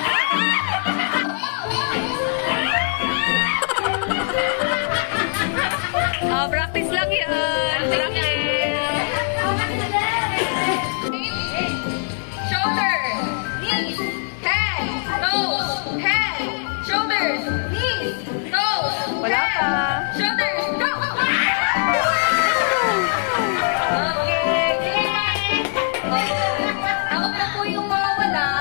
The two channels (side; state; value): right; silent; digital silence